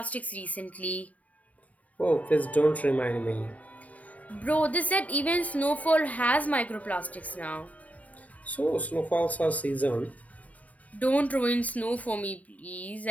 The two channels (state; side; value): late; right; 0.070 ms